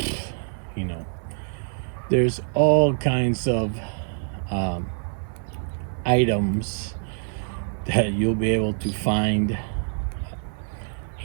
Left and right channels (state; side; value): silent; left; digital silence